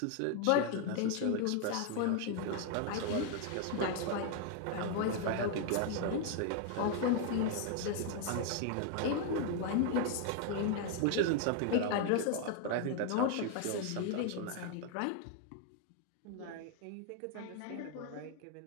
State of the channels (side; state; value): both; different; correlation 0.00